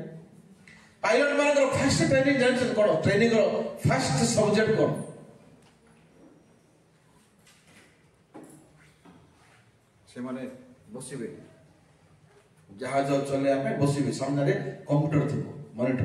ପାଇଲଟ ମାନଙ୍କର ଫାଷ୍ଟ ଟ୍ରେନିଂ ଜାଣିଛନ୍ତି କ'ଣ? ଟ୍ରେନିଂର ଫାଷ୍ଟ ସବଜେକ୍ଟ କ'ଣ? ସେମାନେ ବସିବେ, ଜାହାଜ ଚଲେଇବା ପାଇଁ ବସିବେ, ସାମ୍ନାରେ କମ୍ପ୍ୟୁଟର ଥିବ,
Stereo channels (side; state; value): both; identical; correlation 1.00